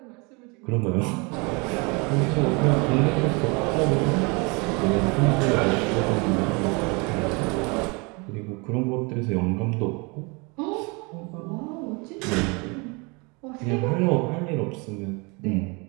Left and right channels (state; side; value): quieter; left; 29.2 dB